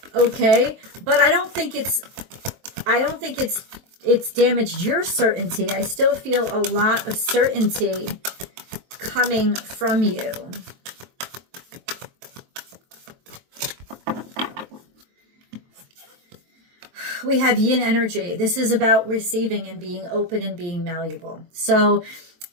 Okay. But I don't think it's damaged your certainty. I still feel a lot of certainty coming from you. We have yin energy. This is about receiving and being open and being malleable. So,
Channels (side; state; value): left; late; 23 ms